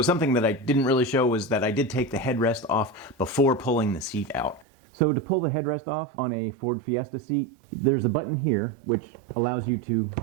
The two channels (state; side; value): drops out; left; at 4.7 s